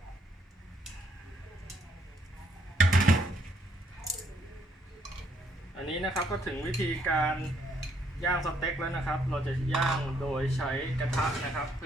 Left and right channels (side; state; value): both; normal; correlation 0.70